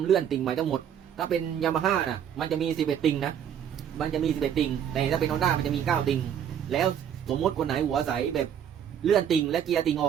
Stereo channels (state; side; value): quieter; left; 9.1 dB